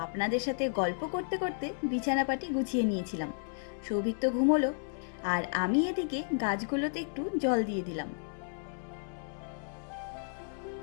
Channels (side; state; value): right; silent; 56 dB below the other